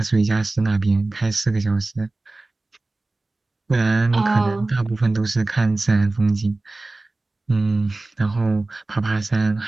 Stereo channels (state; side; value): quieter; left; 3.1 dB